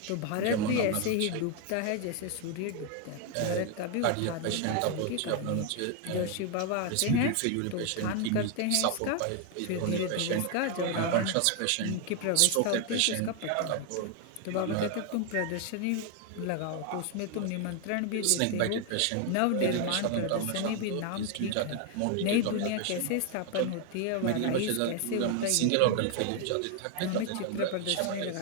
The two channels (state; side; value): different; both; correlation 0.00